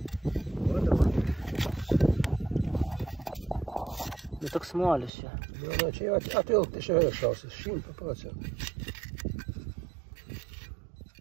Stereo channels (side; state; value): left; drops out; at 5.1 s